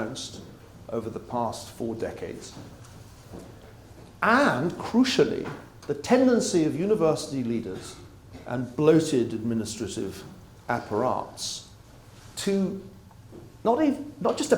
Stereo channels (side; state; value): both; identical; correlation 1.00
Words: over the past 4 decades, and, crucially, the tendency of university leaders and bloated administrative apparatus to not just